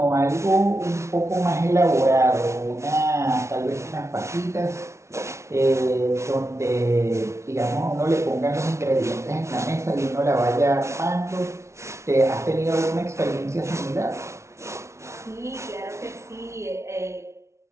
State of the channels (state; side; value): late; left; 0.13 ms